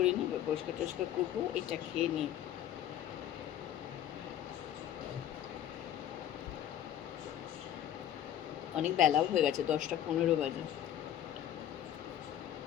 পরিষ্কার টরিষ্কার করবো, এটা খেয়ে নিই। অনেক বেলাও হয়ে গেছে, 10টা 15 বাজে।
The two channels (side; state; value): right; quieter; 11.1 dB